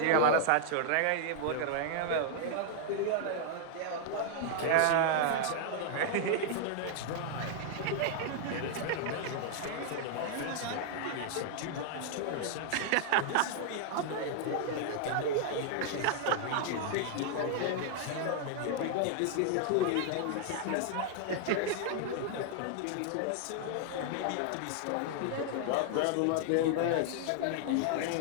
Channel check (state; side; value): different; both; correlation 0.00